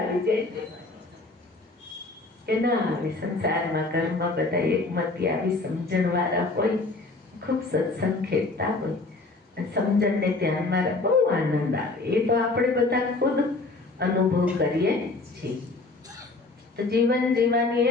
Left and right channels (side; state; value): right; quieter; 3.4 dB